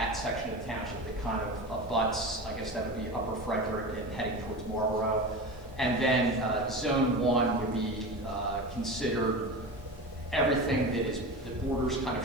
section of the township that kind of abuts, I guess that would be Upper Frederick and heading towards Marlboro. And then Zone 1 would be considered everything that borders kind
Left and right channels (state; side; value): normal; both; correlation 0.27